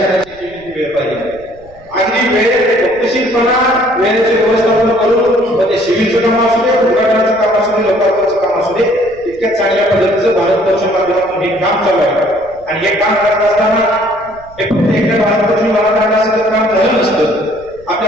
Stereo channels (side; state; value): right; noise; rumble, 25 dB below the sound